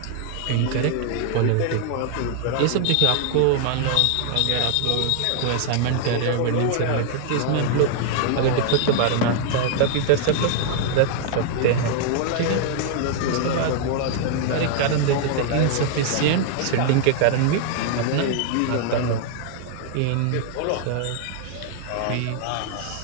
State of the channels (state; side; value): different; both; correlation 0.00